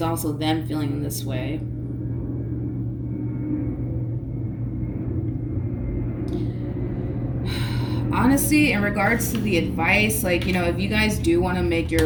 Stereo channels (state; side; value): identical; both; correlation 1.00